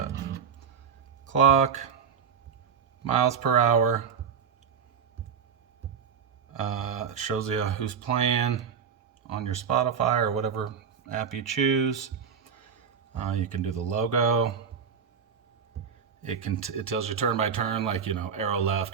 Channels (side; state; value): left; quieter; 6.9 dB